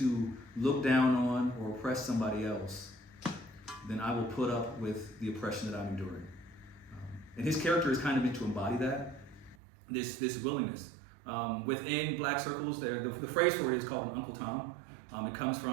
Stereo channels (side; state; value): left; drops out; at 9.6 s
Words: look down on or oppress somebody else, then I will put up with the oppression that I'm enduring. And his character is kind of meant to embody that, this willingness. Within black circles, the phrase for it is called an Uncle Tom. It comes